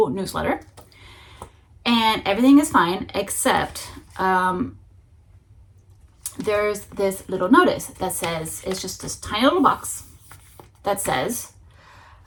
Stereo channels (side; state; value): both; identical; correlation 1.00